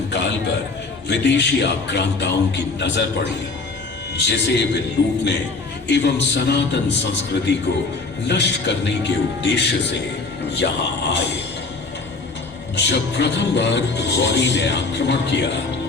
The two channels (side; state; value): right; quieter; 3.8 dB